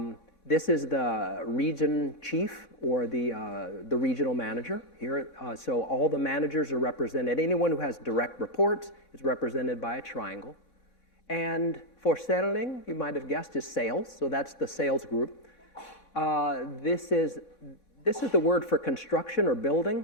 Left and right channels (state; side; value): late; right; 3.6 ms